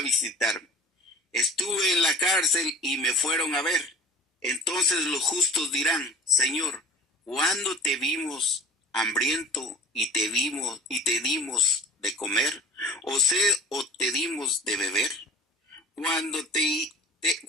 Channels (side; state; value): both; normal; correlation 0.43